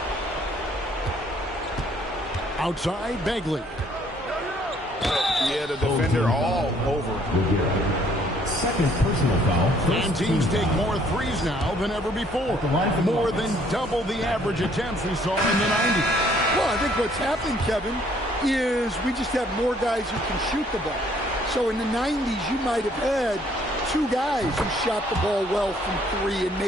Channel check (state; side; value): normal; both; correlation 0.63